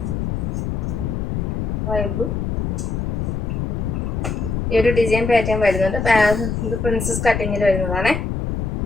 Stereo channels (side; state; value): left; noise; rumble, 1 dB below the sound